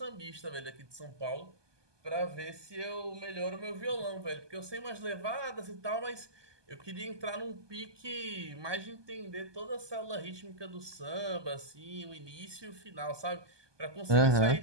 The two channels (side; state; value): left; late; 1.2 ms